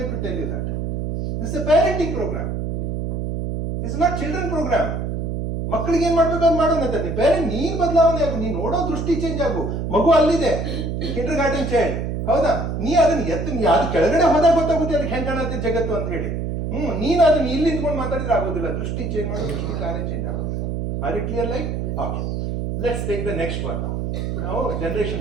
to tell you that. This is a parenting program, this is not children program. ಮಕ್ಕಳಿಗೆ ಏನ್ ಮಾಡ್ಬೇಕು ಅಂತ ಮಾಡೋಣ. ಪೇರೆಂಟ್ ನೀನ್ ಬದಲಾವಣೆ ಆಗು, ನೀನ್ ನೋಡೋ ದೃಷ್ಟಿ ಚೇಂಜ್ ಆಗು. ಮಗು ಅಲ್ಲಿದೆ, ಕಿಂಡರ್ ಗಾರ್ಡನ್ ಚೈಲ್ಡ್, ಹೌದಾ? ನೀ ಅದನ್ನ ಅದು ಕೆಳಗಡೆ ಹೋದಾಗ ಗೊತ್ತಾಗುತ್ತೆ ಅದಕ್ಕೆ ಹೆಂಗ್ ಕಾಣತ್ತೆ ಜಗತ್ತು ಅಂತ ಹೇಳಿ. ನೀನು ಅದನ್ನ ಇಲ್ಲಿ ನಿಂತ್ಕೊಂಡು ಮಾತಾಡಿದ್ರೆ ಆಗೋದಿಲ್ಲ. ದೃಷ್ಟಿ ಚೇಂಜ್ ಮಾಡೋ ದೃಷ್ಟಿ ಕಾರ್ಯ ಚೇಂಜ್ ಆಗೋದು. Are it clear like? Okay, let's take the next one. ನಾವು ಜನರೇಷನ್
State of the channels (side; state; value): right; noise; hum, 2 dB below the sound